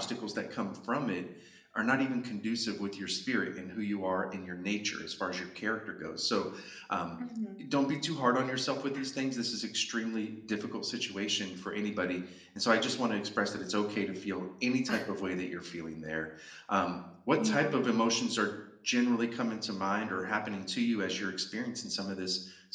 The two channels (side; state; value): both; identical; correlation 1.00